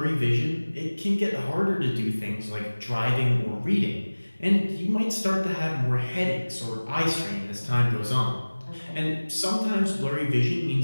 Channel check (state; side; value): inverted; both; correlation -1.00